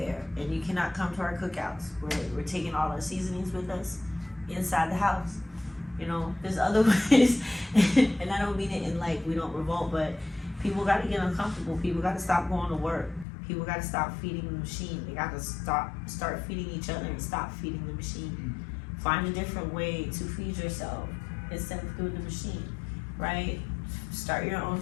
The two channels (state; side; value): drops out; right; at 13.2 s